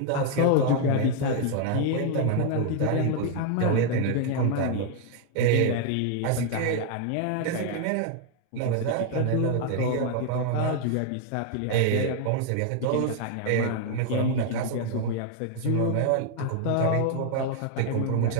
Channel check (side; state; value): both; different; correlation 0.00